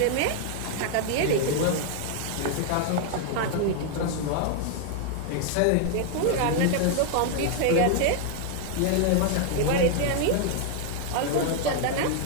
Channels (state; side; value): different; both; correlation 0.00